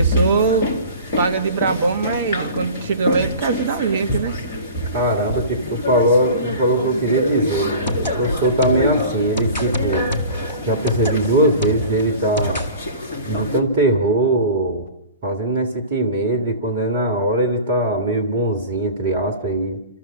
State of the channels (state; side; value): inverted; both; correlation -0.39